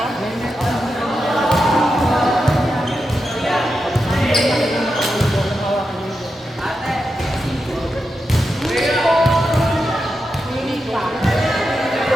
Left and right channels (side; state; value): both; normal; correlation 0.88